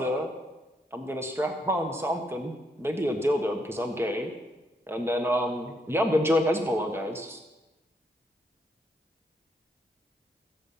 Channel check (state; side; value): normal; both; correlation 0.75